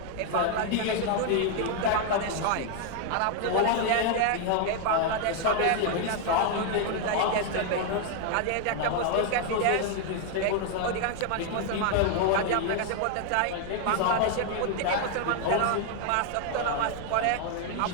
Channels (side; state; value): both; different; correlation 0.01